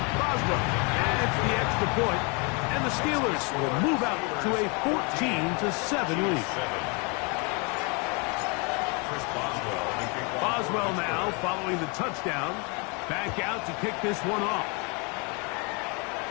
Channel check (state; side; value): quieter; right; 32.3 dB